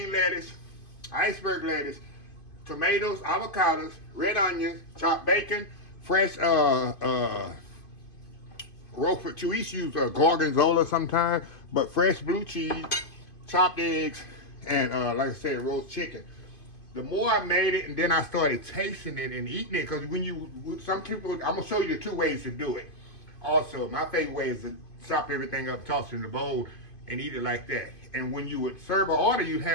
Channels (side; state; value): right; late; 2.5 ms